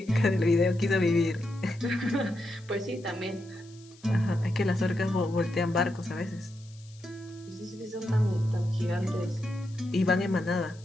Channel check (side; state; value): left; noise; hiss, 25 dB below the sound